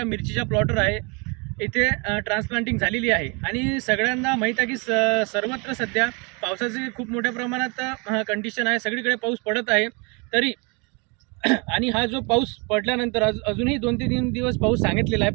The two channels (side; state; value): left; quieter; 30.7 dB